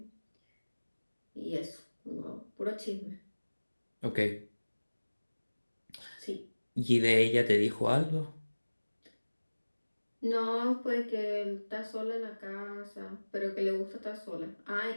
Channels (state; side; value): inverted; both; correlation -1.00